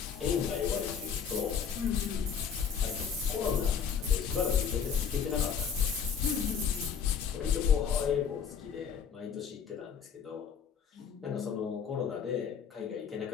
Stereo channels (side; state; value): right; quieter; 7.1 dB